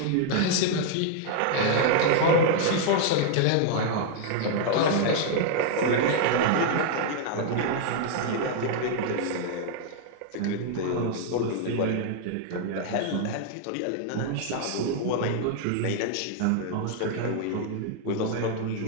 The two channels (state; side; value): different; both; correlation 0.00